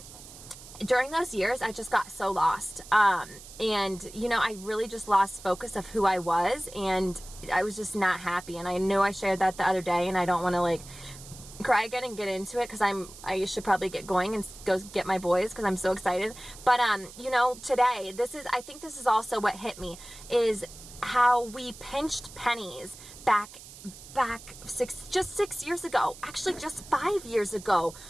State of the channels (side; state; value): right; noise; hiss, 17 dB below the sound